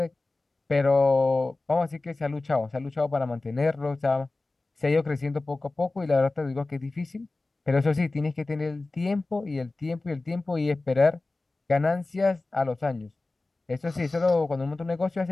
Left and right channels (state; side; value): quieter; right; 3.2 dB